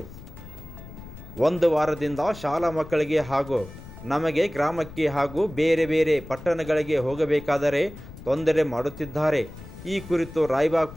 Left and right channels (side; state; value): left; noise; rumble, 16 dB below the sound